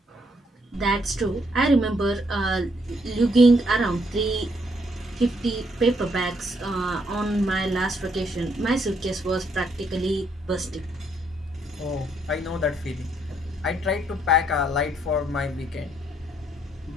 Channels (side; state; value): both; normal; correlation 0.72